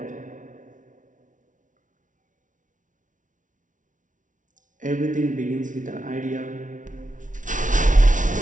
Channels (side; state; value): left; late; 0.37 ms